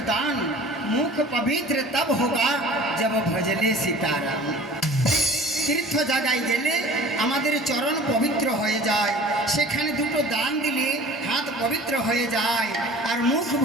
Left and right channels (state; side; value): normal; both; correlation 0.45